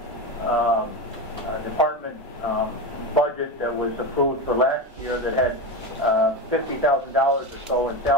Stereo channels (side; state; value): both; normal; correlation 0.19